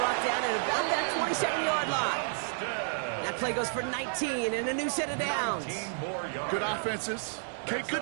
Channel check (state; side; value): silent; left; digital silence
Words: down at about that 27-yard line. That play goes for 19 and a new set of downs. Good offenses. Okay,